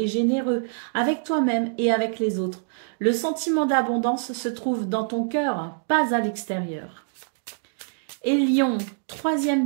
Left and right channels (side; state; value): left; silent; digital silence